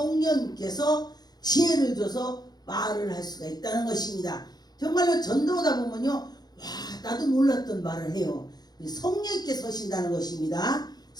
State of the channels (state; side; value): late; right; 0.19 ms